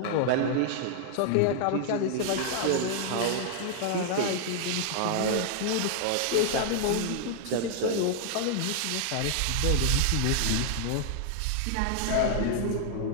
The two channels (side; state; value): both; different; correlation -0.01